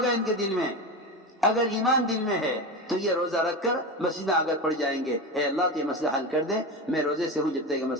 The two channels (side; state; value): both; normal; correlation 0.22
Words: ان کے دل میں، اگر ایمان دل میں ہے تو یہ روزہ رکھ کر مسجد میں آگر پڑ جائیں گے، اے اللہ تو یہ مسئلہ حل کر دے، میں روزے سے ہوں جب تک یہ